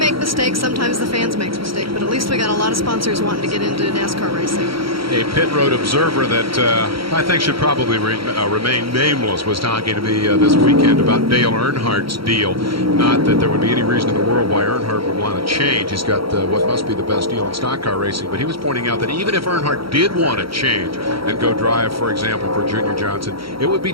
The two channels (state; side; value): late; left; 0.75 ms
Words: mistakes. Sometimes the fans make mistakes, but at least we got a lot of sponsors wanting to get into NASCAR racing. A pit road observer that I think should probably remain nameless was talking to me this weekend about Dale Earnhardt's deal. Not that there would be any reason in the world why Earnhardt would want to change. He's got what must be the best deal in stock car racing, but he was pointing out that even if Earnhardt did want to change and go drive, for example, for Junior Johnson, it would